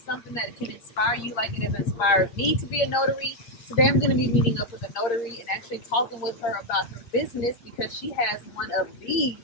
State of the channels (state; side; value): late; right; 8.6 ms